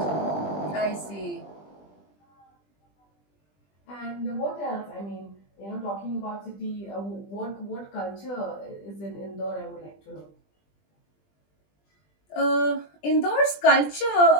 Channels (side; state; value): right; late; 20 ms